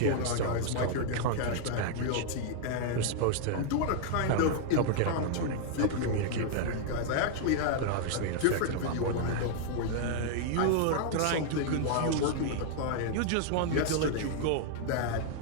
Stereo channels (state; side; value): different; both; correlation -0.01